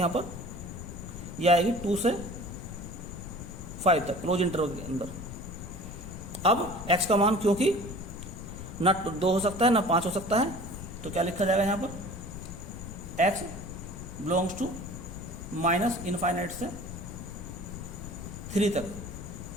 पर ये आएगी 2 से 5 तक क्लोज इंटरवल के अंदर। अब x का मान क्योंकि ना 2 हो सकता है ना 5 हो सकता है, तो क्या लिखा जाएगा यहाँ पर x belongs to minus infinite से 3 तक।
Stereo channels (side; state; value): left; noise; rumble, 10 dB below the sound